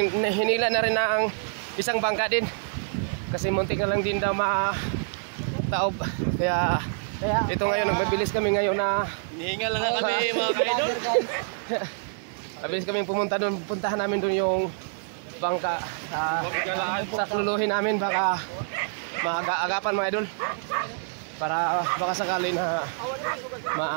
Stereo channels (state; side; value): silent; left; digital silence